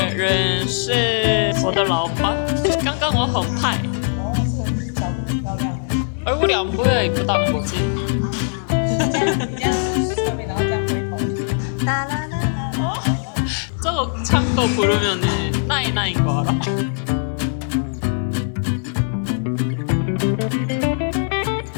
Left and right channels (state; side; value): silent; right; digital silence